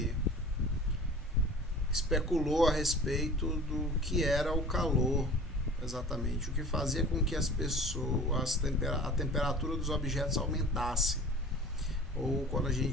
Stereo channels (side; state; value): both; normal; correlation 0.42